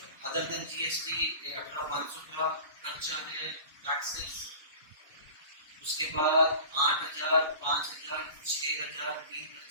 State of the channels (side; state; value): both; inverted; correlation -0.39